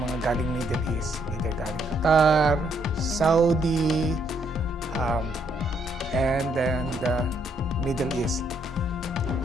galing Middle East. Either galing Qatar, Saudi, and then the Middle East.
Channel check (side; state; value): both; normal; correlation 0.71